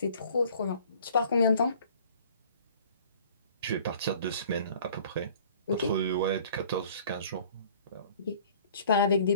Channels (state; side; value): inverted; both; correlation -0.51